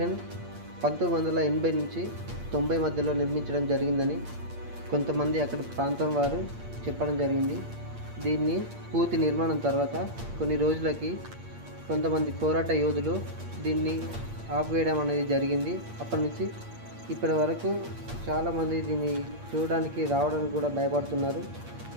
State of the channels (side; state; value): left; late; 8.6 ms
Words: 1980 నుంచి 90 మధ్యలో నిర్మించడం జరిగిందని కొంతమంది అక్కడ ప్రాంతం వారు చెప్పడం జరిగింది. దీన్ని పూర్తి నిర్మాణం తర్వాత కొన్ని రోజులకి కొంతమంది పోరాట యోధులు దీన్ని ఆపివేయడం అనేది జరిగింది. అప్పటి నుంచి ఇప్పటి వరకు చాలామంది దీన్ని చూడడానికి రావడానికి కూడా భయపడుతున్నారు.